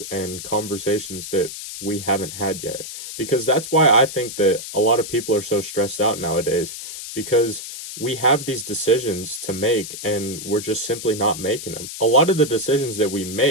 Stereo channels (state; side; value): noise; left; hiss, 9 dB below the sound